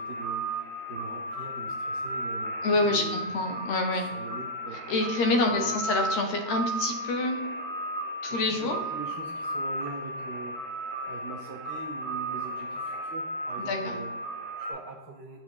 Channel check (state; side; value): late; right; 13 ms